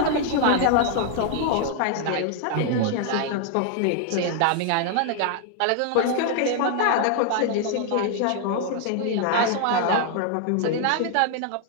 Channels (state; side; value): different; both; correlation 0.00